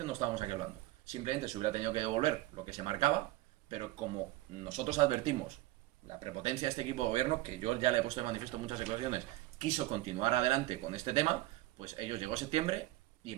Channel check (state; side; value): quieter; left; 17.6 dB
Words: no estábamos aquí hablando. Simplemente se hubiera tenido que devolver lo que se marcaba, pero como nosotros advertimos la prepotencia de este equipo de gobierno, que yo ya le he puesto de manifiesto en muchas declaraciones, quiso continuar adelante con este tema, pues ellos llegó septiembre y en